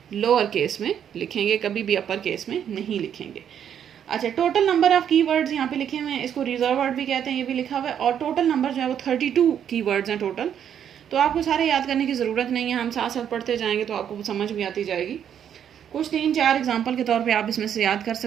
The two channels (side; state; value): left; quieter; 9.1 dB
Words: लोअर केस में लिखेंगे, कभी भी अपर केस में नहीं लिखेंगे। अच्छा, टोटल नंबर ऑफ कीवर्ड्स यहाँ पे लिखे हुए हैं, इसको रिजर्व वर्ड भी कहते हैं, ये भी लिखा हुआ है। और टोटल नंबर जो है वो 32 कीवर्ड्स हैं टोटल। तो आपको सारे याद करने की ज़रूरत नहीं है, हम साथ साथ पढ़ते जाएंगे तो आपको समझ भी आती जाएगी। कुछ 3-4 एग्जाम्पल के तौर पे आप इसमें से याद कर